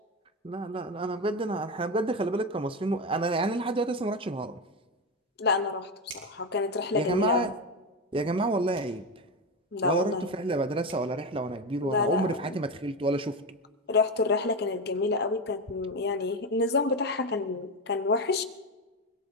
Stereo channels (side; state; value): both; normal; correlation 0.16